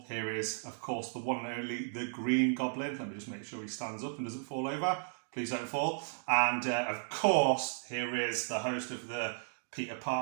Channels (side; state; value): left; silent; digital silence